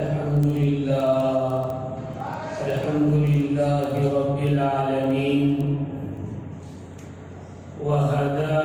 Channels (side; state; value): both; identical; correlation 1.00